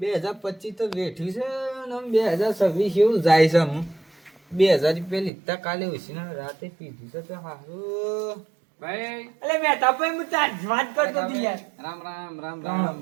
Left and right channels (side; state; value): left; drops out; at 5.3 s